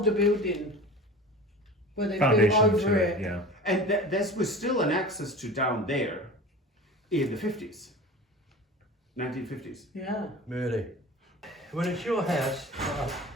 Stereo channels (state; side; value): normal; both; correlation 0.36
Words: building where they built Foundation over to it. it, yeah. And this was still an access to down there in the 50s. 1950s. Yeah. Really. When it's your house,